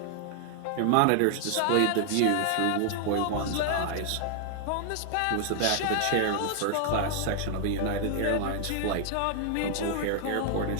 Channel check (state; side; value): different; both; correlation 0.00